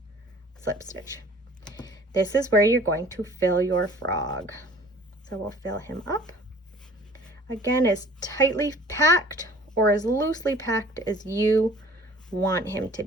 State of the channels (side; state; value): both; normal; correlation 0.51